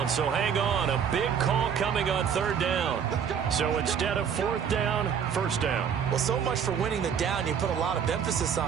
so hang on. A big call coming on 3rd down. So instead of 4th down, 1st down. Well, so much for winning the down you put a lot of emphasis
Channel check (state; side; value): quieter; left; 7.6 dB